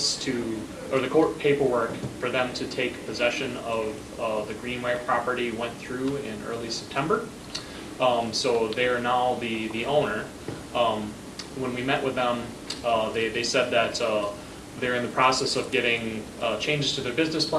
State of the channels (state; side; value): identical; both; correlation 1.00